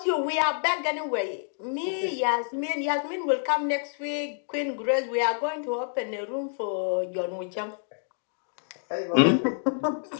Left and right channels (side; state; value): right; silent; digital silence